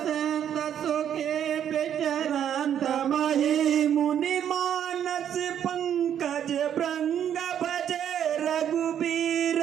संत सुखे विचरंत मही मुनि मानस पंकज भृंग भजे रघुबीर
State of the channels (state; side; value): quieter; left; 9.5 dB